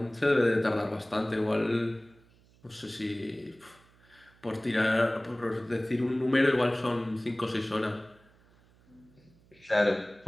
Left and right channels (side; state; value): right; noise; hum, 30 dB below the sound